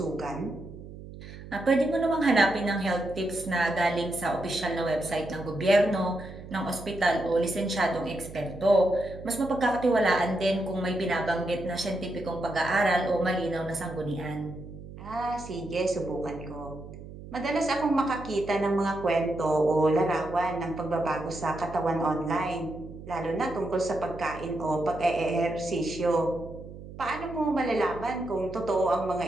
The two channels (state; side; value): noise; right; hum, 14 dB below the sound